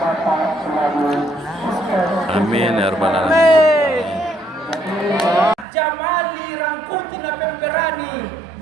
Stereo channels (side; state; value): left; drops out; at 5.7 s